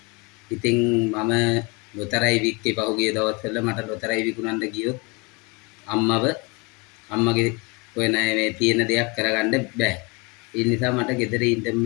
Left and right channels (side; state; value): right; quieter; 28.7 dB